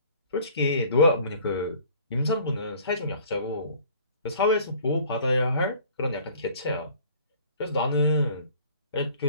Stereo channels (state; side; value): inverted; both; correlation -0.51